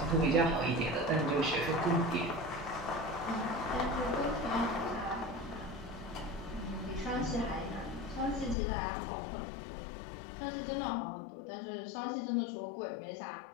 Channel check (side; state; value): right; drops out; at 8.6 s